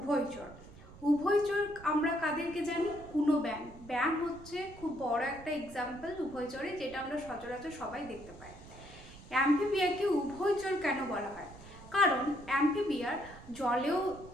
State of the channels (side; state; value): right; noise; rumble, 18 dB below the sound